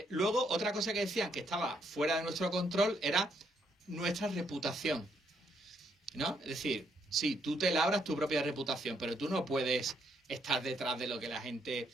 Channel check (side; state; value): both; normal; correlation 0.73